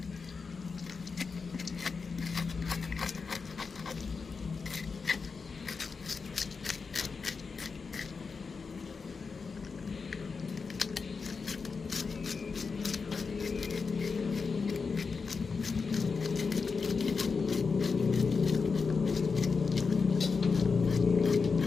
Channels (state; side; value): quieter; right; 4.9 dB